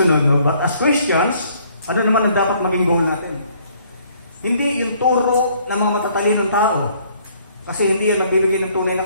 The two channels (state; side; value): inverted; both; correlation -0.62